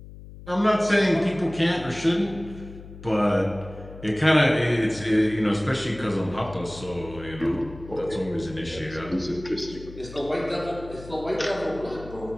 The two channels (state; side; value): noise; left; hum, 16 dB below the sound